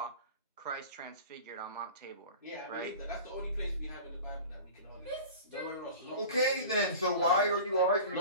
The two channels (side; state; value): both; inverted; correlation -0.37